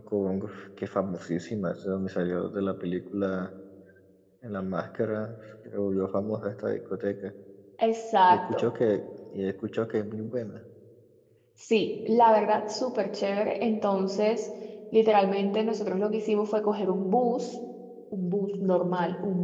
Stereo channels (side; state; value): both; identical; correlation 1.00